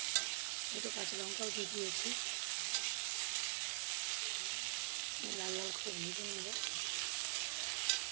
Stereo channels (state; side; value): silent; left; digital silence